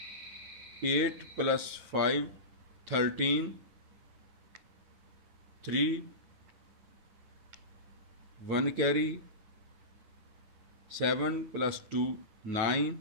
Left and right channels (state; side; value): late; left; 9.4 ms